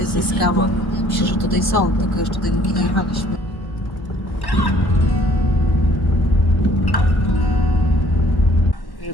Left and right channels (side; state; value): right; late; 1.4 ms